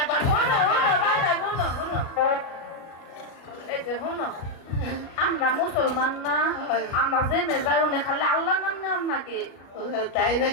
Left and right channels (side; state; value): right; late; 36 ms